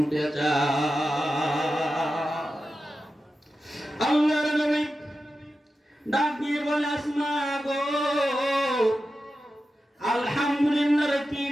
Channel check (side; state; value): both; normal; correlation 0.91